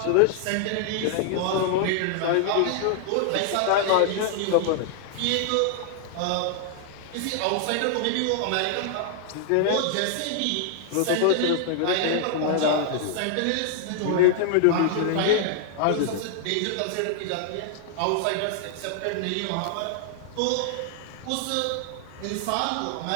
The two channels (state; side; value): different; both; correlation 0.00